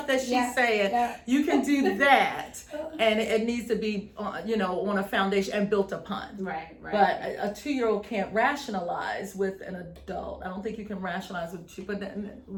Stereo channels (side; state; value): both; identical; correlation 1.00